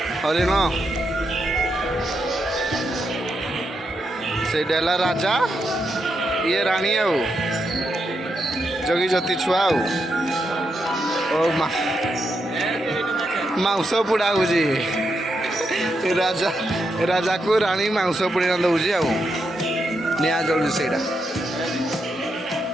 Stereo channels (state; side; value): normal; both; correlation 0.83